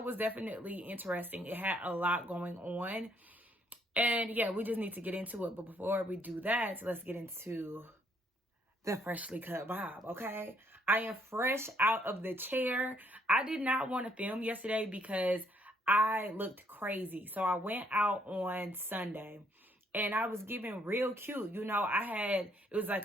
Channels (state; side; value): normal; both; correlation 0.68